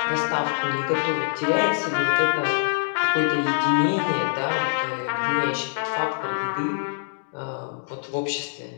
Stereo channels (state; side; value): silent; right; digital silence